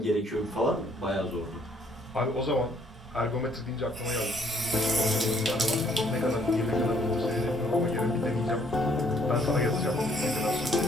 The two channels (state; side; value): normal; both; correlation 0.64